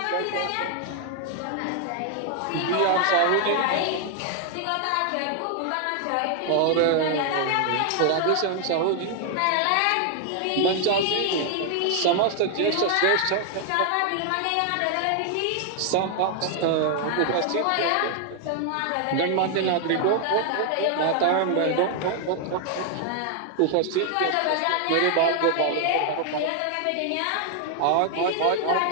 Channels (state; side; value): different; both; correlation 0.00